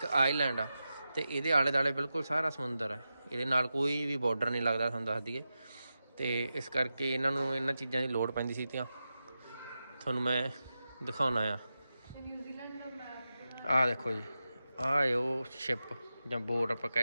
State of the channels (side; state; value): both; inverted; correlation -0.91